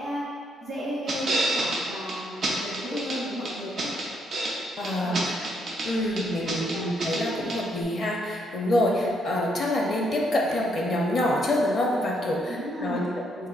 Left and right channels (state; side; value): normal; both; correlation 0.74